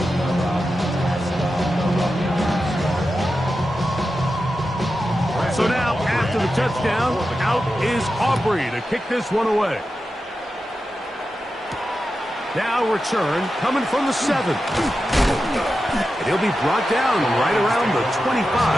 So now, after the touchdown, out is Aubrey to kick this one away. Now return coming from the 7. And he'll be brought down right around the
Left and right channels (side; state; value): both; normal; correlation 0.91